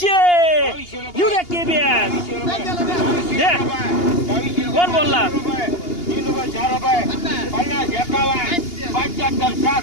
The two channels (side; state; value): right; late; 2.8 ms